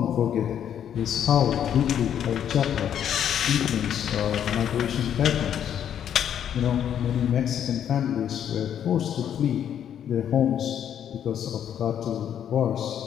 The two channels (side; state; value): right; quieter; 9.5 dB